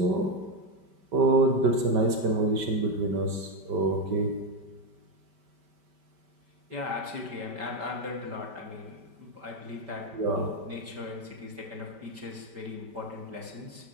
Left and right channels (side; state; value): left; late; 5.1 ms